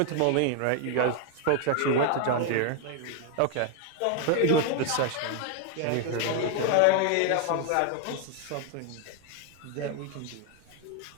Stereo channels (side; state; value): both; different; correlation 0.01